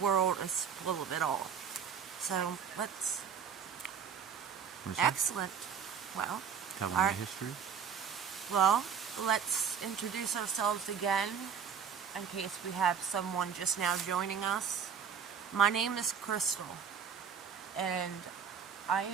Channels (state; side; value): quieter; left; 7.4 dB